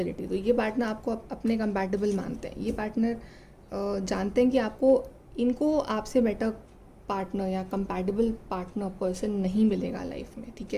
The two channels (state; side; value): identical; both; correlation 1.00